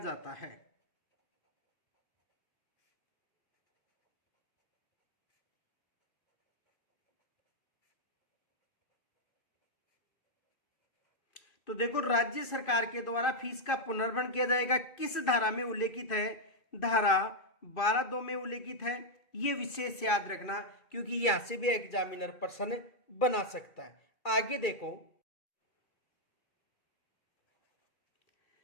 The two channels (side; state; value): right; late; 2.5 ms